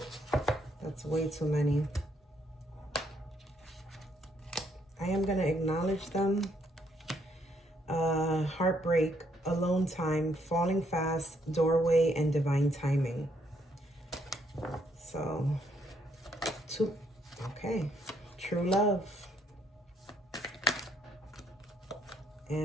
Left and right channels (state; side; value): normal; both; correlation 0.71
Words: That's way too many. I am going to acknowledge them. Heartbreak, alone time, falling fast, doorway, and divine timing. So, 2. Okay. True love.